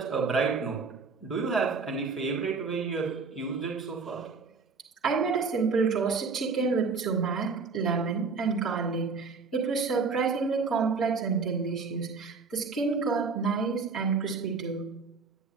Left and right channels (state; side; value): quieter; left; 4.8 dB